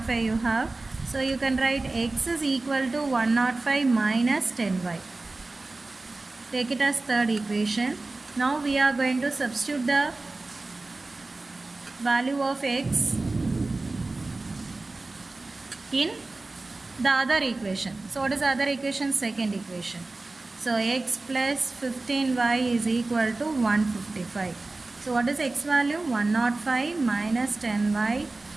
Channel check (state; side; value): quieter; left; 3.3 dB